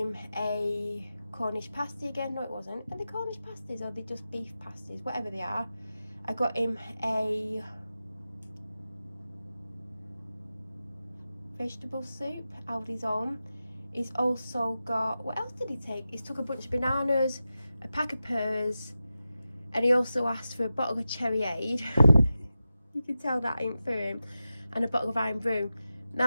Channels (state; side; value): inverted; both; correlation -0.93